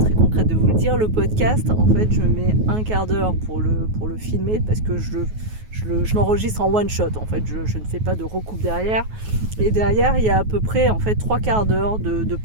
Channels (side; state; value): left; late; 9.3 ms